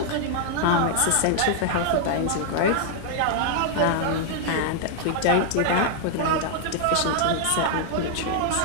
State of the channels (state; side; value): different; both; correlation 0.00